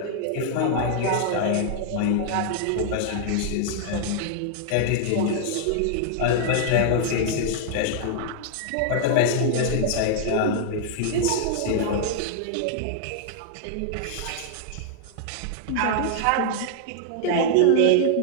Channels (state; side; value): different; both; correlation -0.01